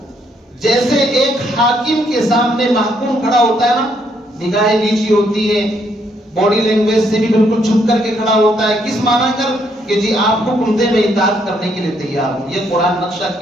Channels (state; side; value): normal; both; correlation 0.72